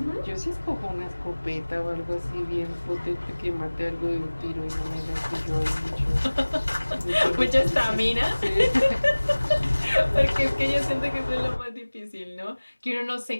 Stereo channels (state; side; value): inverted; both; correlation -1.00